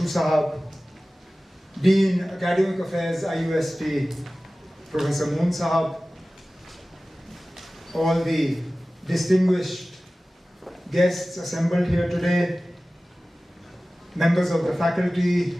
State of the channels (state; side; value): normal; both; correlation 0.97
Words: Sahab, Dean Academic Affairs IUST, Professor Moon Sahab, all the distinguished guests assembled here today, members of the faculty,